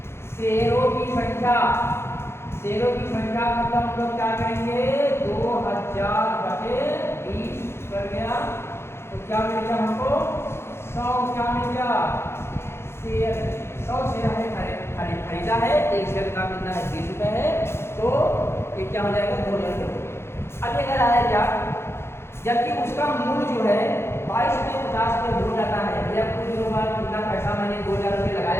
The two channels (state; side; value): late; right; 0.12 ms